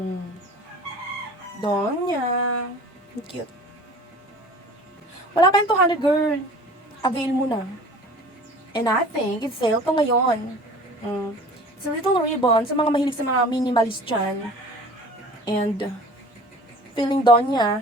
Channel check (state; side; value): normal; both; correlation 0.44